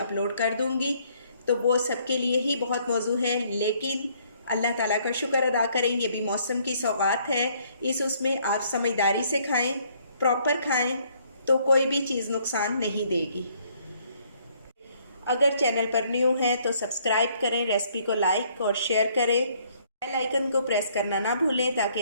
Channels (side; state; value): both; inverted; correlation -0.65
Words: कर दूंगी। तो वो सबके लिए ही बहुत मौजू है, लेकिन अल्लाह ताला का शुक्र अदा करें, ये भी मौसम की सौगात है। इस उसमें आप समझदारी से खाएं, प्रॉपर खाएं, तो कोई भी चीज़ नुकसान नहीं देगी। अगर चैनल पर न्यू है तो सब्सक्राइब करें, रेसिपी को लाइक और शेयर करें बेल आइकन को प्रेस करना ना भूलें ताकि